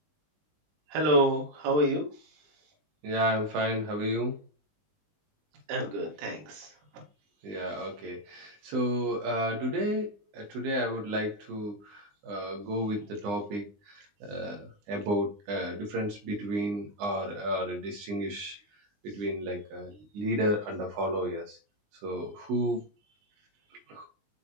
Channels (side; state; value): left; late; 20 ms